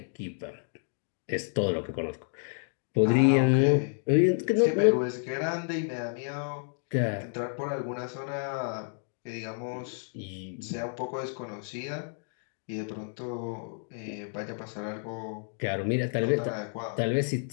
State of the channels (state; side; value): silent; right; digital silence